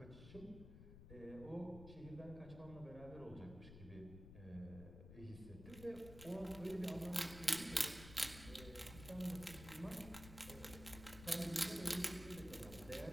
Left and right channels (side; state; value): left; noise; rumble, 13 dB below the sound